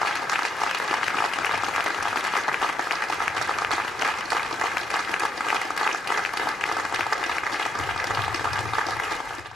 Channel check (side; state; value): both; normal; correlation 0.75